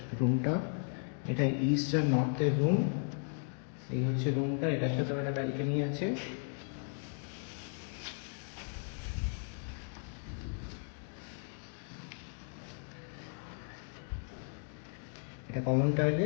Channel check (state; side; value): silent; right; 54 dB below the other